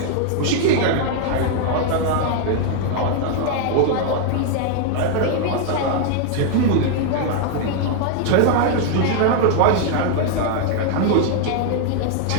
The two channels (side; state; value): both; different; correlation 0.00